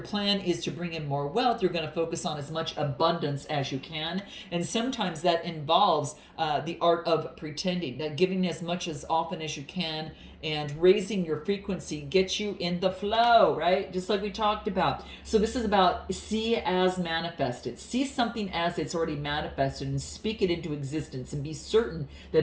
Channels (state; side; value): identical; both; correlation 1.00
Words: plan is to bring in more wealth, you're going to focus on as much abundance as you can. And sometimes that involves the art of pretending, that giving as much as often as you can and raising your frequency gets you in the flow, right? Just like we talked about. So this is about see as manifested. See something as it's already manifested and speak it into existence and be certain